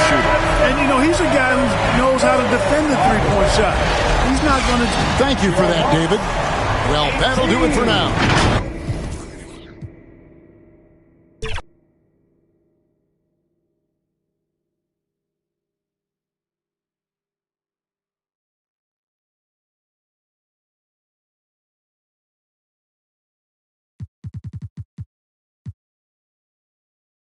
shooter. And, you know, he's a guy who knows how to defend the three-point shot. He's not going to... Thank you for that, David. Well, that'll do it for now.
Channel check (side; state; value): both; identical; correlation 1.00